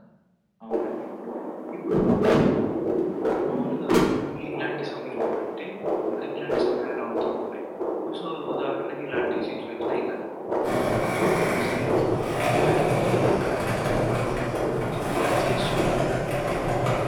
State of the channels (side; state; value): both; identical; correlation 1.00